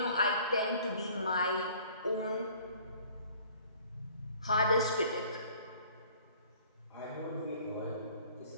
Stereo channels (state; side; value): inverted; both; correlation -0.53